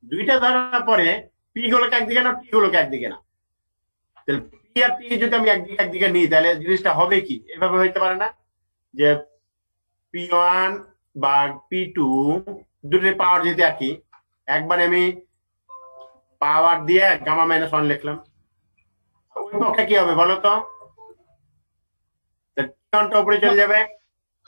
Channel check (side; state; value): both; inverted; correlation -1.00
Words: দুইটা ধরার পরে পি গুলোকে একদিকে না, টি গুলোকে একদিকে না, তাহলে পি আর টি যদি আমি একদিকে একদিকে নিই, তাহলে জিনিসটা হবে কি? এভাবে হইতে পারে না যে P1 বা P2 দুটোর পাওয়ার যদি একই, একবারে আমি পাওয়ার দিয়ে গামা মাইনাস ওয়ান লিখলাম, ওই পক্ষে কি হবে বলো তো? T1টা উপরে চলে যাবে,